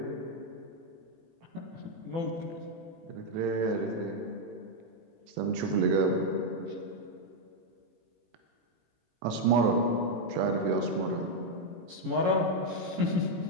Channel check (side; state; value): left; late; 18 ms